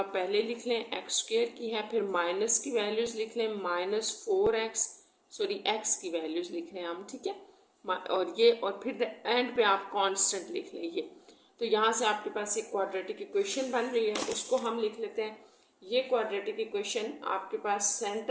पहले लिख लें, एक्स स्क्वेयर की है, फिर माइनस की वैल्यूज़ लिख लें, माइनस 4x, सॉरी एक्स की वैल्यूज़ लिख लें हम, ठीक है, और ये, और फिर एंड पे आप कांस्टेंट लिख लें ये। तो यहाँ से आपके पास एक क्वाड्रेटिक इक्वेशन बन रही है, उसको हम लिख लेते हैं। ये क्वाड्रेटिक इक्वेशन आपके पास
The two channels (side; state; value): both; identical; correlation 1.00